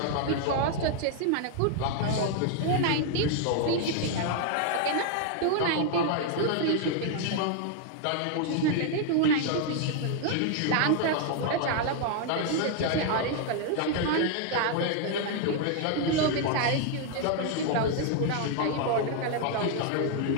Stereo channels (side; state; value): both; different; correlation 0.00